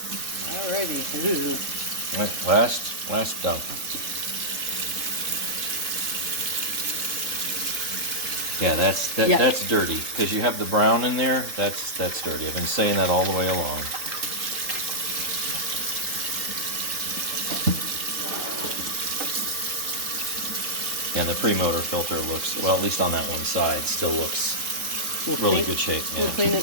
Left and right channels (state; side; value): late; left; 3.7 ms